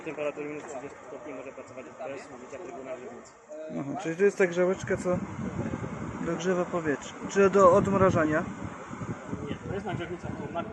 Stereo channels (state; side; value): identical; both; correlation 1.00